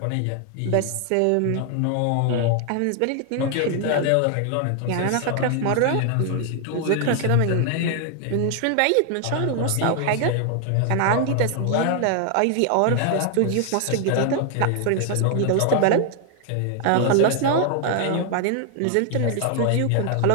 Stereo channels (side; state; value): both; different; correlation 0.00